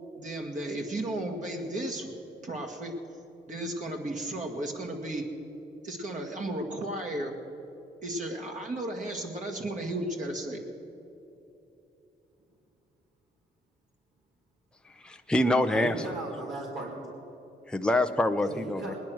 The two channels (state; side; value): normal; both; correlation 0.71